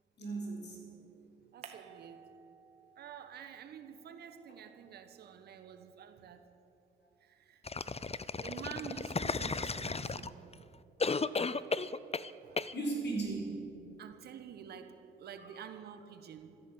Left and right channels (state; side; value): normal; both; correlation 0.41